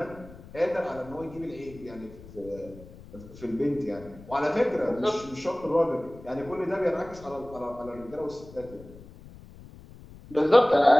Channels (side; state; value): left; noise; rumble, 19 dB below the sound